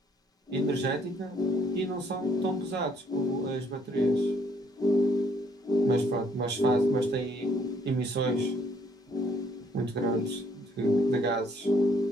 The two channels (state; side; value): normal; both; correlation 0.65